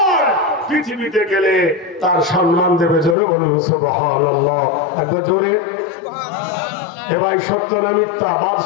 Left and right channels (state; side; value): drops out; right; at 3.2 s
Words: পৃথিবীতে গেলে তার সম্মান দেবে। জোরে বলুন সুবহানাল্লাহ, একবার জোরে। এবার সত্য না মিথ্যা?